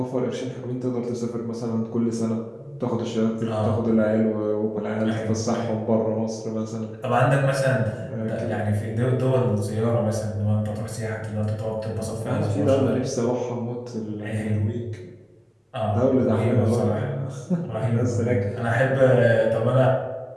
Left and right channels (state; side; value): identical; both; correlation 1.00